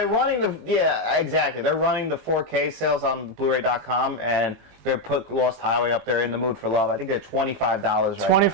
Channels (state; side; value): late; left; 19 ms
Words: running exactly. They're running the 4K sales on Blu-ray.com, and they put Lost Highway up there, In the Mood for Love. I think they're $25 right now.